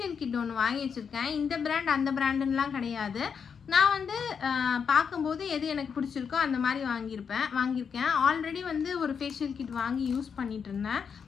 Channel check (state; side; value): quieter; right; 6.6 dB